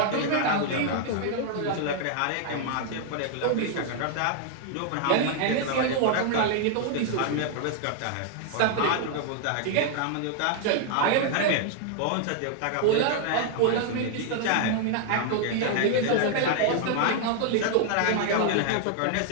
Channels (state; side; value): different; both; correlation 0.00